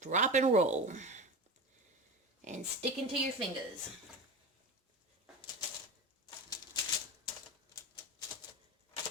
and roll and stick into your fingers.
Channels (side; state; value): both; normal; correlation 0.26